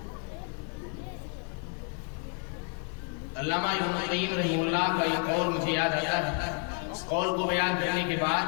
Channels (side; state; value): right; quieter; 38.3 dB